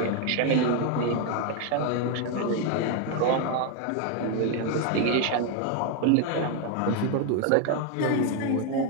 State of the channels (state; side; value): different; both; correlation 0.01